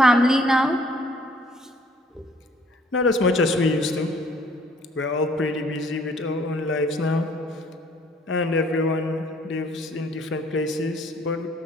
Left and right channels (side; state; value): both; normal; correlation 0.59